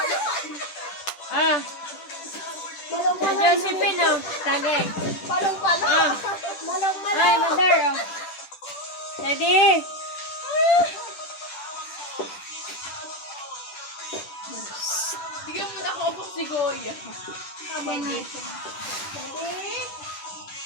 Ah! Malong-malo. Josephine oh. Tagay. Palong-palo. Ah! Malong-malo. Ay, mother oh. Sedi! Bigyan mo na ako si Goya. Sedi.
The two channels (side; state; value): right; late; 10 ms